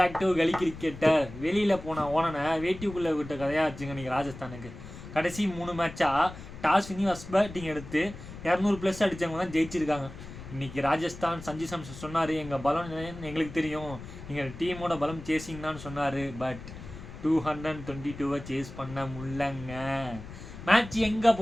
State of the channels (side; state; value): left; noise; rumble, 13 dB below the sound